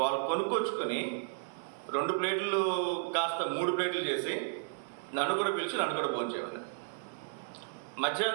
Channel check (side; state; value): left; silent; digital silence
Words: వాళ్ళు కొనుక్కొచ్చుకుని 2 ప్లేట్లు కాస్త 3 ప్లేట్లు చేసి నన్ను కూడా పిలిచి నన్ను కూడా భోంచేయాలి.